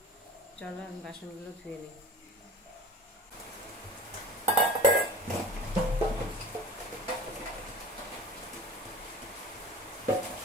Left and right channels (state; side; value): normal; both; correlation 0.38